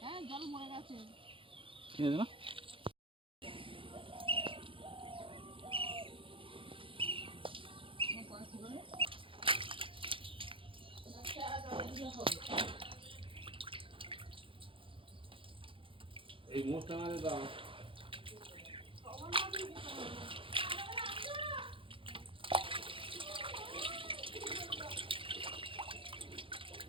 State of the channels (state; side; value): late; left; 0.25 ms